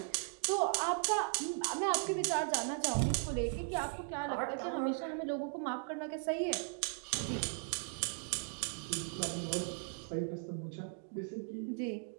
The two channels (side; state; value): left; silent; 53 dB below the other